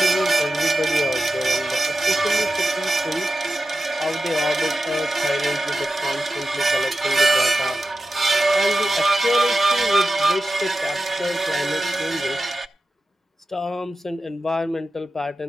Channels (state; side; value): normal; both; correlation 0.92